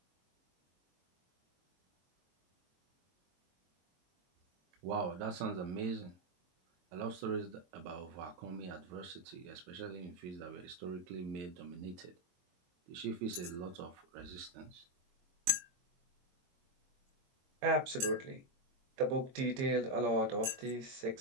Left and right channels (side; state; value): left; late; 22 ms